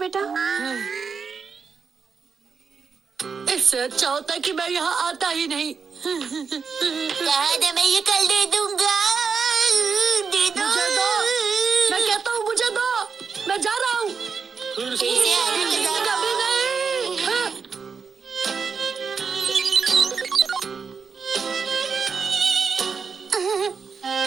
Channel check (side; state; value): left; quieter; 5.7 dB